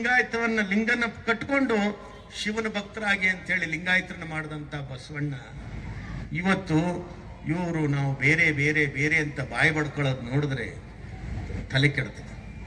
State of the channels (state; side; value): identical; both; correlation 1.00